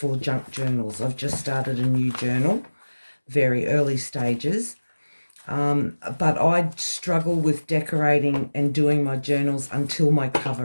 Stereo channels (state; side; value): inverted; both; correlation -1.00